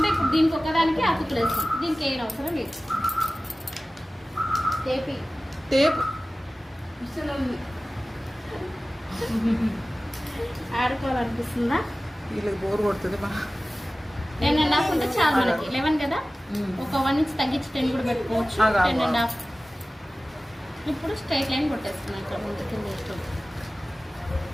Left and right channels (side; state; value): both; normal; correlation 0.96